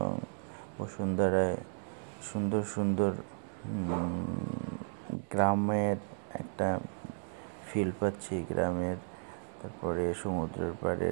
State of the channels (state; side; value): silent; left; 55 dB below the other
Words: বসুন্ধরায় সুন্দর সুন্দর গ্রামের একটা ফিল পাচ্ছি, তারপরে সমুদ্রের